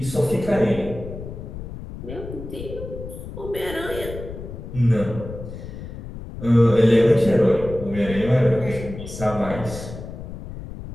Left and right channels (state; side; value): noise; left; rumble, 10 dB below the sound